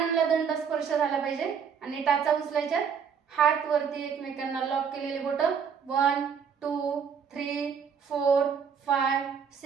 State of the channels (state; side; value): quieter; left; 6.9 dB